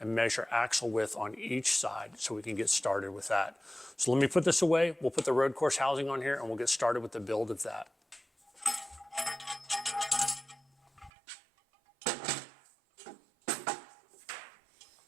measure axle width on each side so we can get started with that. So let me put this away. We'll put the road course housing on here, and we'll get started with the build of that.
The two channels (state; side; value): drops out; left; at 11.1 s